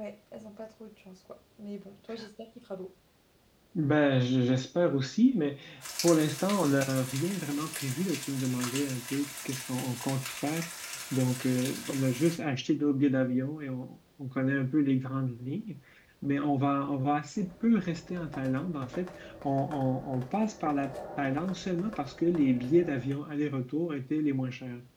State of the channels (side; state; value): both; identical; correlation 1.00